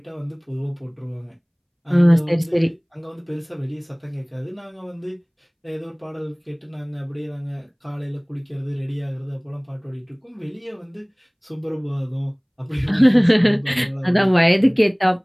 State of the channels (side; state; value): both; identical; correlation 1.00